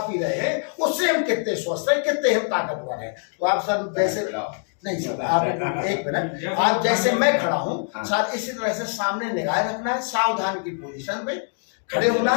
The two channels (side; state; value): right; silent; 58 dB below the other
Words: पी रहे हैं उससे हम कितने स्वस्थ हैं, कितने हम ताकतवर हैं। तो आप सर वैसे नहीं सर, आप एक मिनट, आप जैसे मैं खड़ा हूँ सर इसी तरह से सामने निगाह रखना है, सावधान की पोजीशन पे खड़े होना